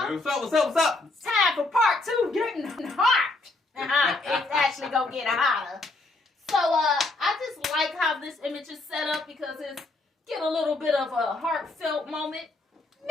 up? What's up? It's time for part 2, getting hot. It's actually gonna get hotter. So I just like how this image is set up because it's get a little bit of a heartfelt moment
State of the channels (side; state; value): right; quieter; 3.1 dB